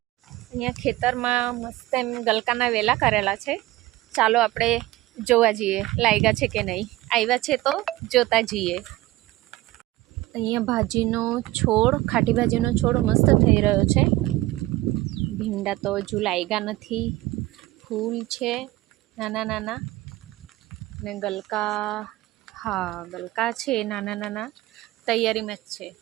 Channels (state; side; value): quieter; left; 17.9 dB